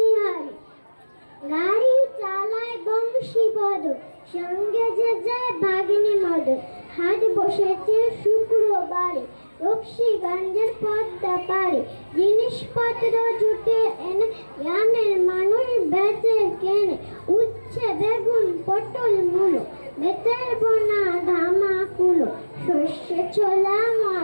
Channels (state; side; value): inverted; both; correlation -1.00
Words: গাড়ি চালায় বংশীবদ, সঙ্গে যে যায় ভাগিনী মদ। হাট বসেছে শুক্রবারে, রক্সিগঞ্জের পদ্মা পারে। জিনিসপত্র জুটে এনে গ্রামের মানুষ বেচে কেনে। উচ্ছে বেগুন পটল মূলো, বেতের বোনা ধামা কুলো। সর্ষে ছোলা